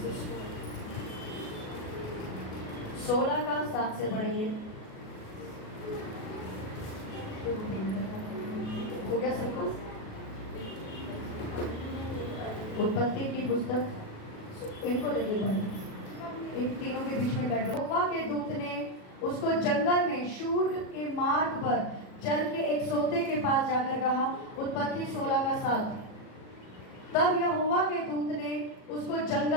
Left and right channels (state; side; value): late; right; 37 ms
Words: 16 का 7 से पढ़ेंगे। हो गया सब कुछ? उत्पत्ति की पुस्तक इनको दे दो बाइबल, एक तीनों के बीच में बैठ। यहोवा के दूत ने उसको जंगल में शूर के मार्ग पर चल के एक सोते के पास जाकर कहा। उत्पत्ति 16 का 7। तब यहोवा के दूत ने उसको